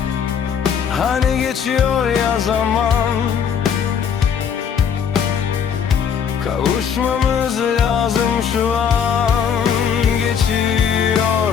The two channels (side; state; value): right; quieter; 7.4 dB